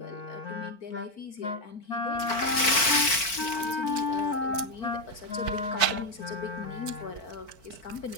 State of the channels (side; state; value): right; late; 4.5 ms